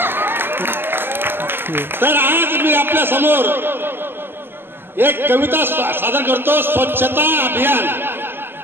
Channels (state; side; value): late; left; 0.10 ms